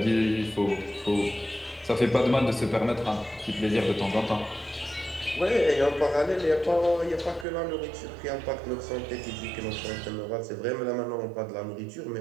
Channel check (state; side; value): drops out; left; at 7.5 s